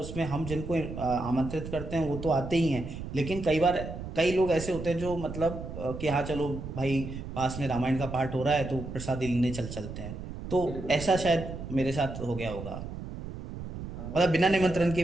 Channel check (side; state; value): right; noise; rumble, 9 dB below the sound